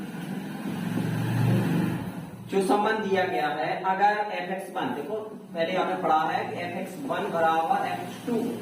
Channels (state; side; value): identical; both; correlation 1.00